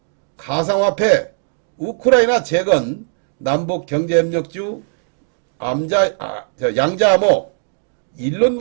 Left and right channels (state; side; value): silent; left; digital silence